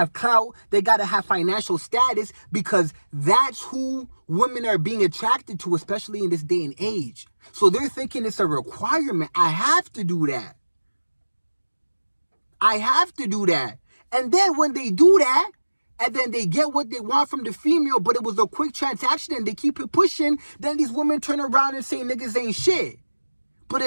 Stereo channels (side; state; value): both; inverted; correlation -1.00